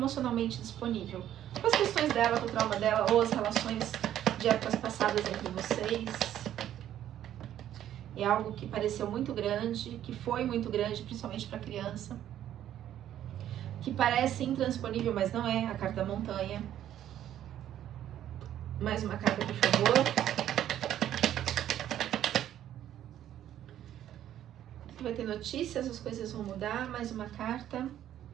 disponível. Com as questões dela, com o trauma dela, ou as relações de épocas passadas entre vocês. É algo que pareceu muito grande, que foi muito grande, principalmente para criança. Que parece intransponível, mas não é. A carta da montanha. Mais uma carta, por favor. Vai ter notícias, as coisas vão mudar. Mais uma carta.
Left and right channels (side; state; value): left; quieter; 11.4 dB